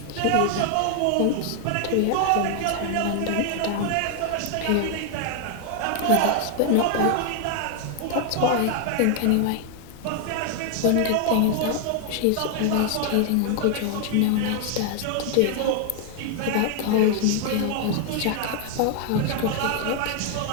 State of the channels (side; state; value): both; different; correlation 0.00